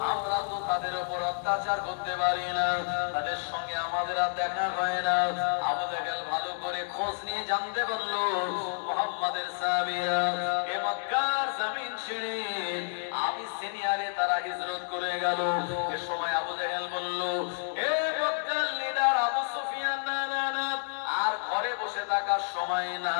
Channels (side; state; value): right; silent; digital silence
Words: আমরা তো তাদের উপর অত্যাচার করতে পারি না, তাদের সঙ্গে আমাদের আর দেখা হয় না। আবু জাহেল ভালো করে খোঁজ নিয়ে জানতে পারলো মুহাম্মাদের সাহাবীরা এ মক্কার জমিন ছেড়ে আবিসিনিয়ারে তারা হিজরত করে গেল। এ সময় আবু জাহেল বলল, এ মক্কার লিডার আবু সুফিয়ান, না না না, আর ঘরে বসে থাকার সময়